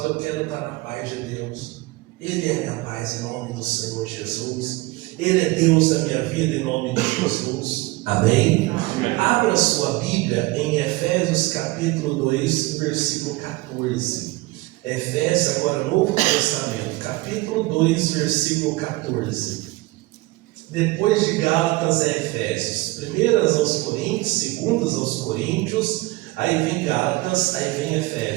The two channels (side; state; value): left; quieter; 21.1 dB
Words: eu quero estar na paz de Deus. Ele é a minha paz em nome do Senhor Jesus. Ele é Deus da minha vida em nome de Jesus. Amém? Amém. Abra sua Bíblia em Efésios capítulo 2, versículo 14. Efésios, agora Novo Testamento, capítulo 2, versículo 14. Depois de Gálatas é Efésios. Primeiras aos Coríntios, segundas aos Coríntios, aí vem Gálatas, aí vem